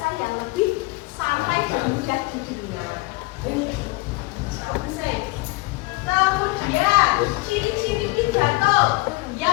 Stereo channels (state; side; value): quieter; right; 23.5 dB